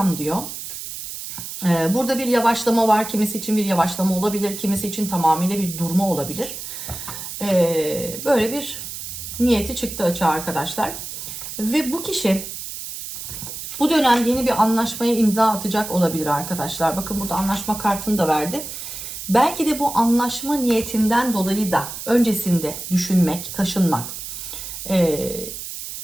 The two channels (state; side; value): noise; right; hiss, 9 dB below the sound